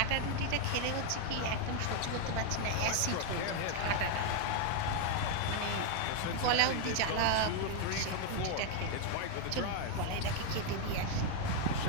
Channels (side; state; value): both; different; correlation 0.01